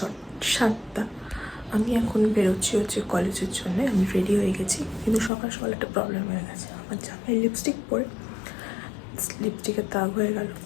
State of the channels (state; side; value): drops out; right; at 5.3 s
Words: আমি এখন বেরোচ্ছি কলেজের জন্য। আমি রেডি হয়ে গেছি, কিন্তু সকাল সকাল একটা প্রবলেম হয়ে গেছে। আমার জামায় লিপস্টিক পরে লিপস্টিকের দাগ হয়ে গেল।